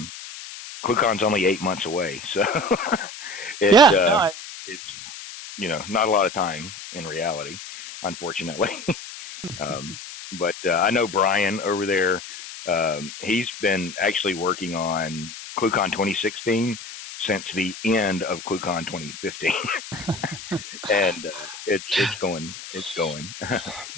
only 8 months away, so it's not a lot of time in reality, unfortunately. But I know Brian over there. He's been actually working on ClueCon 2016 since the end of ClueCon 2015, and it's going.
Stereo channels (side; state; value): left; noise; hiss, 12 dB below the sound